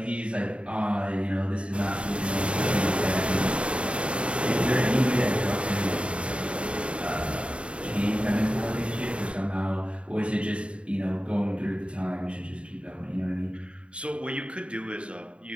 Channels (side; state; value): left; late; 0.059 ms